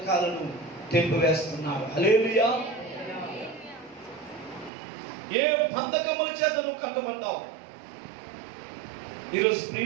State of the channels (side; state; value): left; drops out; at 4.7 s